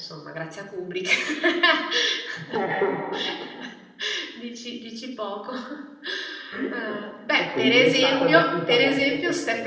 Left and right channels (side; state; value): both; identical; correlation 1.00